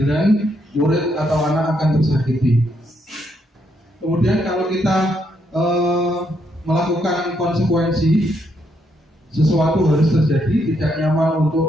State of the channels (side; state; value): both; normal; correlation 0.76